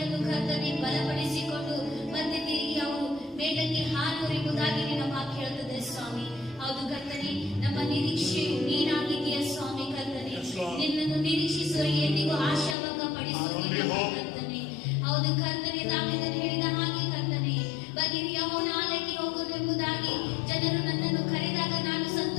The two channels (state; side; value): drops out; right; at 12.8 s